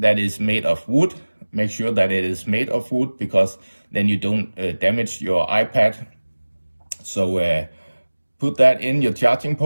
that is made of wood. Make sure that it is made of wood because then you don't damage your iPad. So put that in your charging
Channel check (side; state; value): both; inverted; correlation -1.00